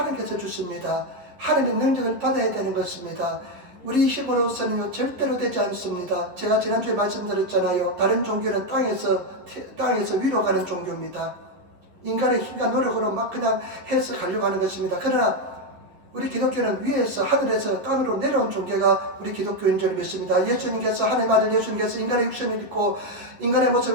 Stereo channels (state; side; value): late; left; 11 ms